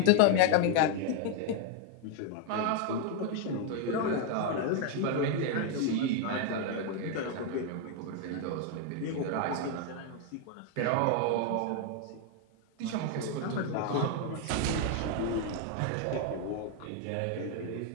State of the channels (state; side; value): different; both; correlation 0.01